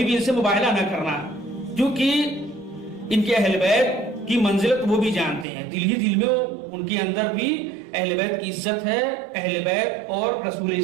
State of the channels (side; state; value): left; drops out; at 5.5 s